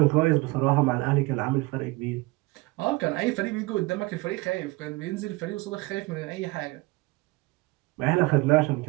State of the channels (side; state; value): left; quieter; 22.7 dB